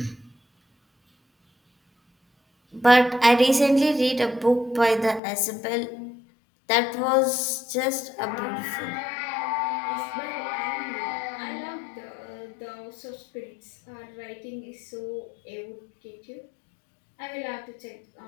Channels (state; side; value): drops out; right; at 5.2 s